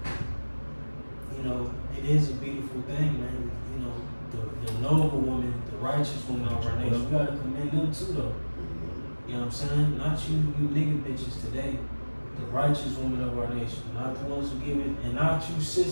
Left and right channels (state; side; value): inverted; both; correlation -1.00